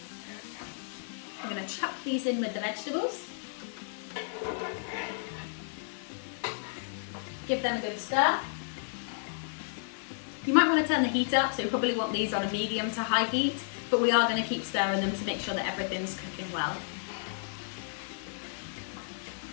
I'm going to chuck these in with the vegetables. Give them a good stir. You might want to turn the heat up, so you probably want these on a medium to high heat, but we are going to keep stirring them to make sure that everything's cooking well.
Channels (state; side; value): silent; right; digital silence